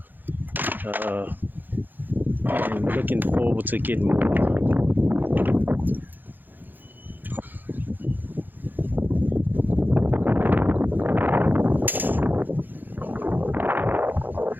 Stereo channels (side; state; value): left; late; 0.088 ms